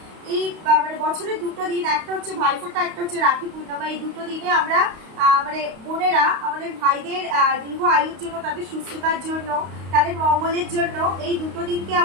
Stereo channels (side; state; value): left; late; 32 ms